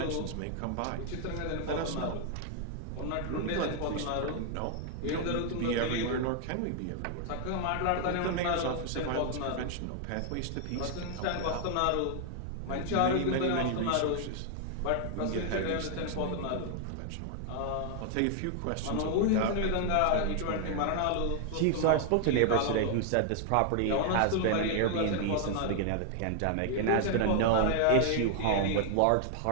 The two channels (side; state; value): both; different; correlation 0.00